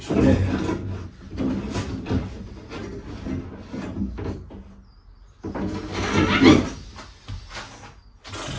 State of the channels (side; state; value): both; identical; correlation 1.00